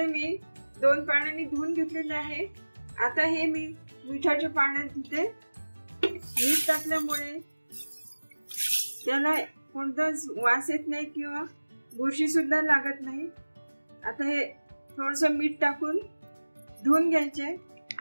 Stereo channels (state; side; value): inverted; both; correlation -1.00